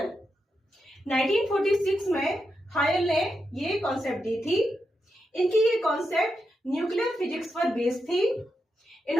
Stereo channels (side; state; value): both; normal; correlation 0.85